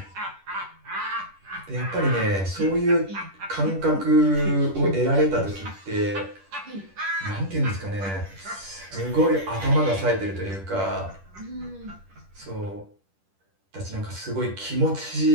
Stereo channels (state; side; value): late; left; 10 ms